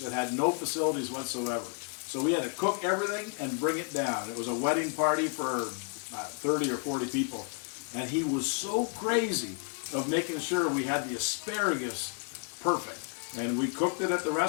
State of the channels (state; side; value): quieter; right; 38.6 dB